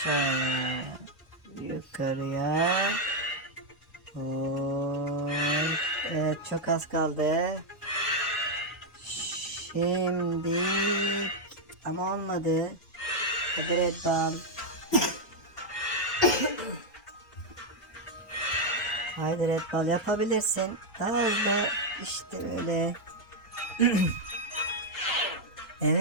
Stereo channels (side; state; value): right; late; 1.9 ms